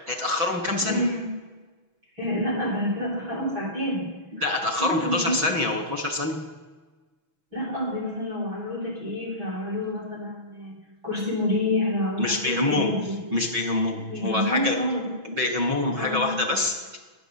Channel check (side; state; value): left; late; 6.1 ms